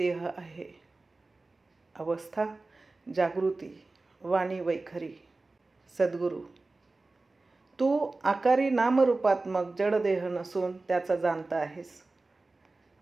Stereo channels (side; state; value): left; quieter; 3.4 dB